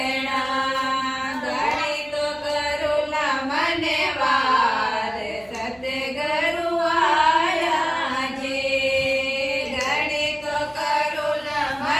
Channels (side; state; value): right; noise; hum, 29 dB below the sound